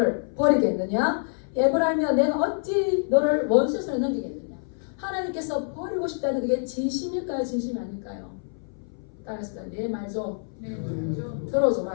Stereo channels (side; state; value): right; silent; 58 dB below the other